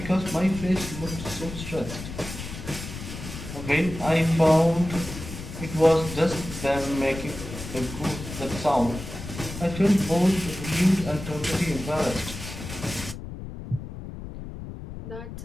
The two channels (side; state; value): left; noise; rumble, 10 dB below the sound